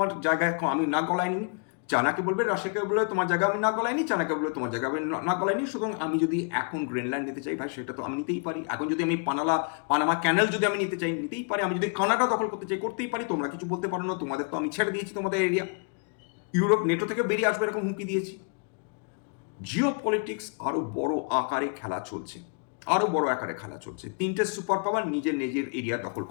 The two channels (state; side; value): quieter; right; 39.9 dB